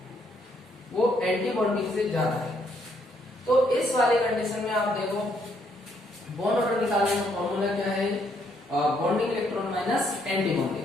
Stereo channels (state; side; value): normal; both; correlation 0.71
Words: वो एंटी बॉन्डिंग से ज्यादा है। तो इस वाले कंडीशन में आप देखो बॉन्ड ऑर्डर निकालने का फॉर्मूला क्या है, bonding electron minus anti